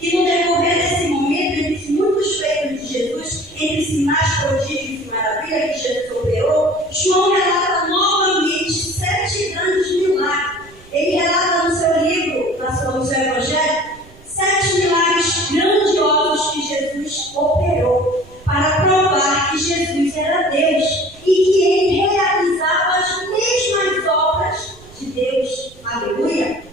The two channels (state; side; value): noise; right; rumble, 24 dB below the sound